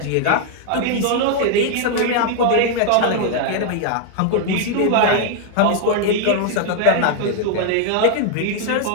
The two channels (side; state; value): both; different; correlation 0.00